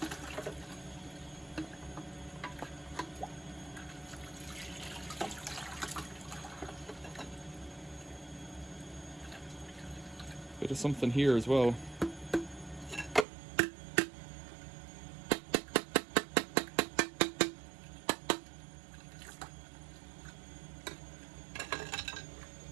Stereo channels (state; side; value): drops out; left; at 13.2 s